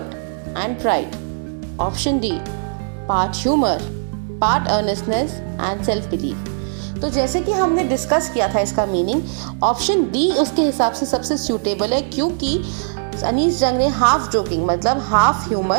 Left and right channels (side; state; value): left; silent; digital silence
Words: and pride. Option D, part humor, part earnestness and self-belief. तो जैसे कि हमने discuss किया था इसका meaning, option D उसके हिसाब से सबसे सूटेबल है, क्योंकि अनीस जंग ने हाफ जोकिंग मतलब हाफ